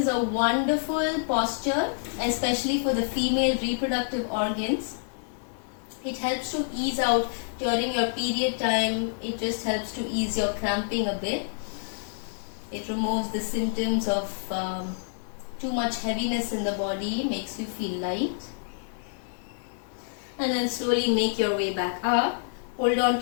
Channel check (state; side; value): silent; right; digital silence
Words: a wonderful posture, especially for the female reproductive organs. It helps to ease out during your period time. It just helps to ease your cramping a bit. It removes the symptoms of too much heaviness in the body, makes you feel light. And then slowly make your way back up. Hold on